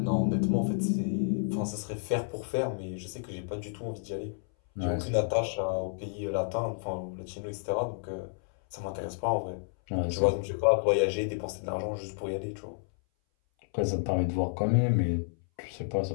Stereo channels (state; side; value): silent; right; 57 dB below the other